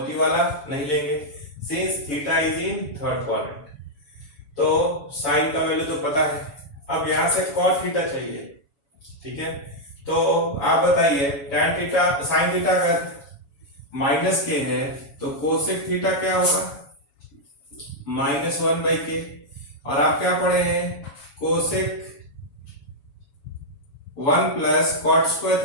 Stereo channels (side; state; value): right; late; 7.2 ms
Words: वाला नहीं लेंगे, since theta is in third quadrant. तो साइन का वैल्यू तो पता है, अब यहां से cot थीटा चाहिए, ठीक है। तो आप बताइए tan थीटा साइन थीटा अगर माइनस के है तो कोसेक थीटा क्या होगा, -1/k। और आप क्या पढ़े हैं, cosec 1 plus cot square